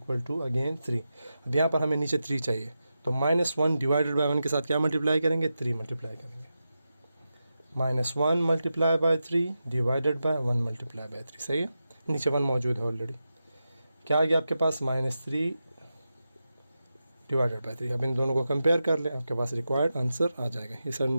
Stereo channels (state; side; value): inverted; both; correlation -0.90